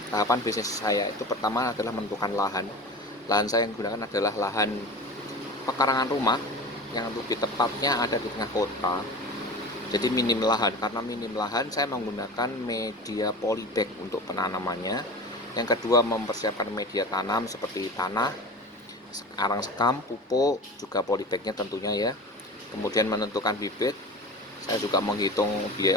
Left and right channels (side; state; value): both; normal; correlation 0.33